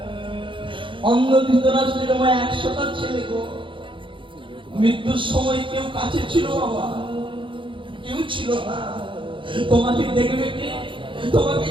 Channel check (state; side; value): late; left; 0.24 ms